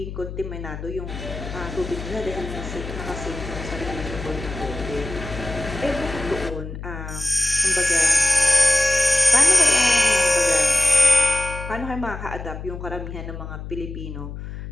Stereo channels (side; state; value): left; noise; hum, 9 dB below the sound